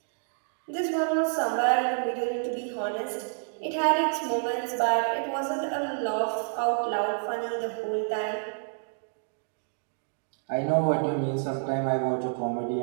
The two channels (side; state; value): left; silent; digital silence